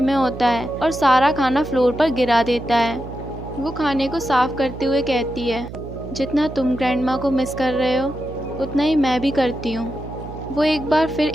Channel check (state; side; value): noise; right; hum, 11 dB below the sound